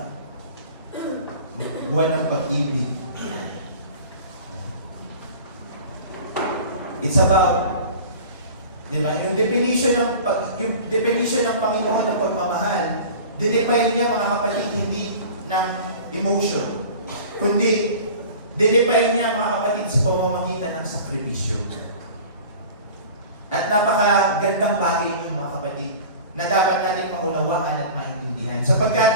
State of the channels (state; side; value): inverted; both; correlation -0.40